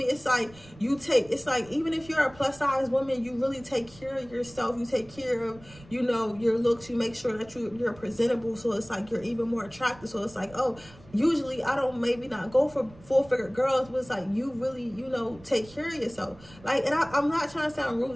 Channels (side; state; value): right; noise; rumble, 22 dB below the sound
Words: It's like it's like, even if you're a plus size woman, you really take care of yourself. You take care of, you know, your looks. You make sure that you're presentable. So it's like, you're even more attractive. So it's like, oh, usually I don't maybe not go for full-figure girls, but it's like, you really, you know, take care of yourself. Like, and I'm not trying to sound